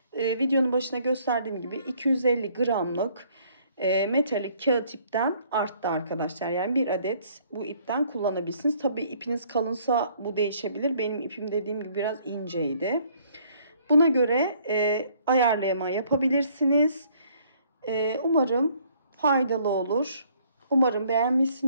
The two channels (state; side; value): inverted; both; correlation -0.62